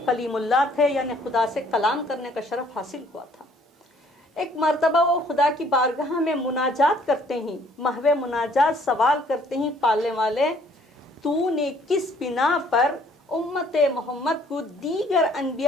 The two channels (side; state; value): both; normal; correlation 0.61